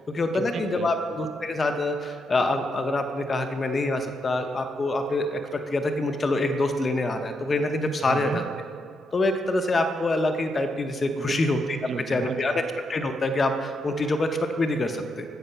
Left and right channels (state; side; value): normal; both; correlation 0.81